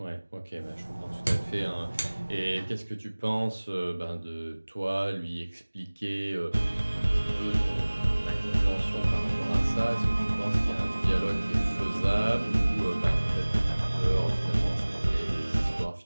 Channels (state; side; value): inverted; both; correlation -1.00